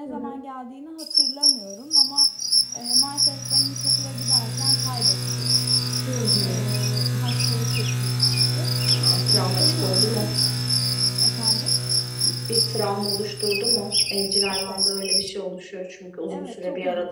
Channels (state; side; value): identical; both; correlation 1.00